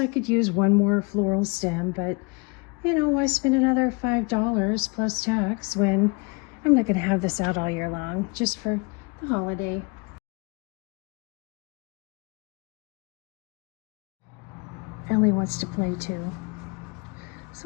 could use one more floral stem, but you know, why spend another $5 plus tax when I'm not gonna have this out all year long, just for the holiday. Ellie wants to play too.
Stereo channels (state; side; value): quieter; right; 29.2 dB